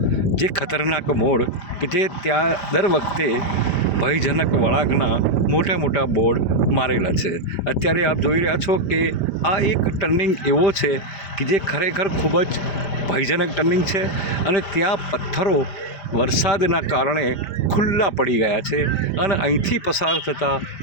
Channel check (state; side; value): late; right; 5.0 ms